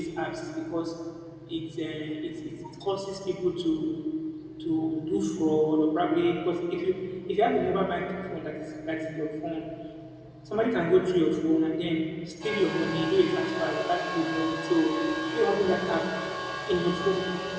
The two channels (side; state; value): both; identical; correlation 1.00